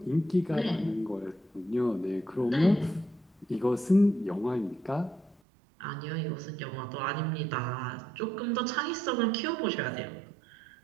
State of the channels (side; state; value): left; drops out; at 5.4 s